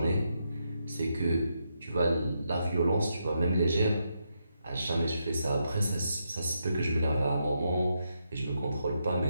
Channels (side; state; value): both; inverted; correlation -0.81